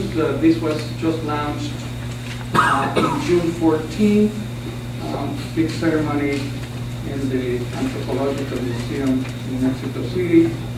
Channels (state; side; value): identical; both; correlation 1.00